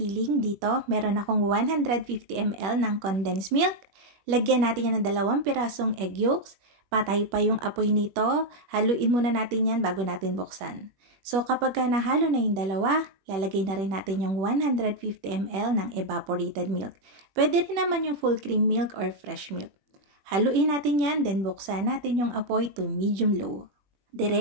Dito, meron akong 150 ml ng condensed milk. Lagyan natin yan ng 2 pirasong egg yolks. Patay pa yung apoy nito. Haluin muna natin yan bago natin buksan. So kapag nahalo na yung dalawa, lalagay na rin natin yung 150 ml ng evaporated milk. Pwede rin naman yung full cream milk or fresh milk. Haluin natin yan, then buksan natin yung apoy to medium-low.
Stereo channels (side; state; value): left; late; 21 ms